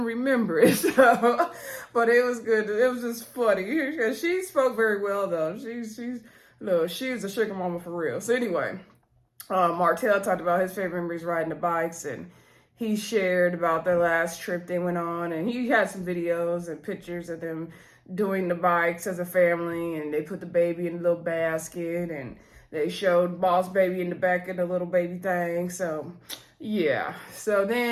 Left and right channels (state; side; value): identical; both; correlation 1.00